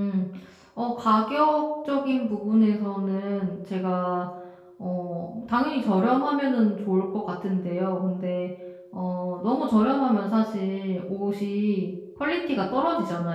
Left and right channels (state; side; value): identical; both; correlation 1.00